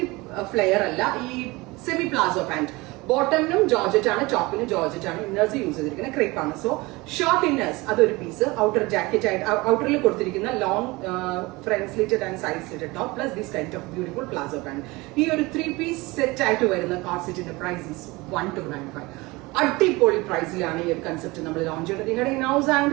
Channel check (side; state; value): left; quieter; 22.7 dB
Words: ഫ്ലെയർ അല്ല, ഈ സെമി പ്ലാസോ പാന്റ്. ബോട്ടമിനും ജോർജറ്റ് ആണ്, ടോപ്പിനും ജോർജറ്റ് ആണ്. ഇന്നേഴ്സ് യൂസ് ചെയ്തിരിക്കുന്ന ക്രേപ്പ് ആണ്. സോ ഷോർട്ട് ഇന്നേഴ്സ് അതൊരു പീസ്. ഔട്ടർ ജാക്കറ്റ് ആയിട്ട് ഔട്ടറിൽ കൊടുത്തിരിക്കുന്ന long front slitted and side slitted top plus this kind of beautiful palazzo pant. ഈ ഒരു 3-piece സെറ്റ് ആയിട്ട് വരുന്ന കോർസെറ്റിന്റെ പ്രൈസ് ഈസ് 1295. അടിപൊളി പ്രൈസിലാണ് ഈ ഒരു കൺസെപ്റ്റ് നമ്മൾ ലോഞ്ച് ചെയ്യുന്നത്. നിങ്ങളുടെ ഇൻഹൗസ്